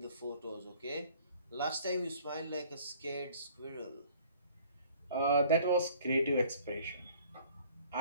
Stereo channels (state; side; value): inverted; both; correlation -0.55